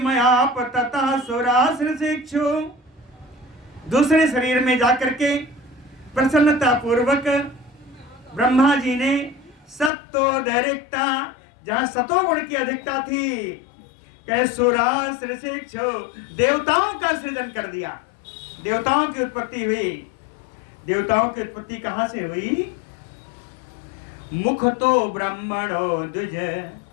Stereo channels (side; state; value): right; drops out; at 9.9 s